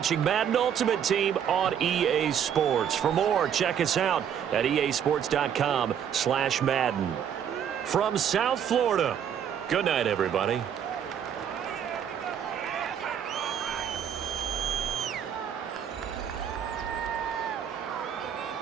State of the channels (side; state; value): left; quieter; 8.7 dB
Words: Madden Ultimate Team on EA Sports. For more, check us out at easports.com/Madden. From South Florida, good night, everybody.